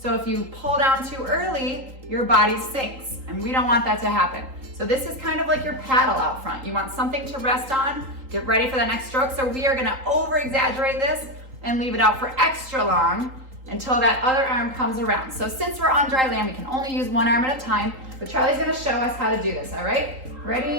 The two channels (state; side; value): late; left; 3.8 ms